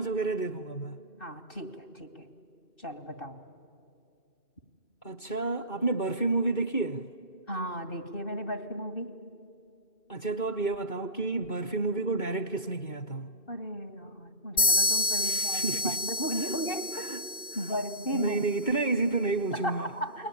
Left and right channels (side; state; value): right; late; 2.2 ms